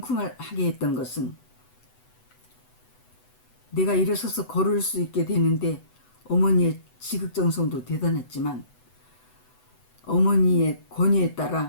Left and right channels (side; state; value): right; late; 8.0 ms